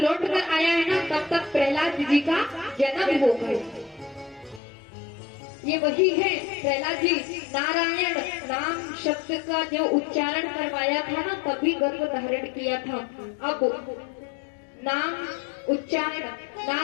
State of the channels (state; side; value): drops out; right; at 4.6 s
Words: आया है ना, तब तक प्रहलाद जी का जन्म हो गया। ये वही है प्रहलाद जी नारायण नाम शब्द का जो उच्चारण करवाया था ना, तभी गर्भ धारण किया था। अब नाम उच्चारण,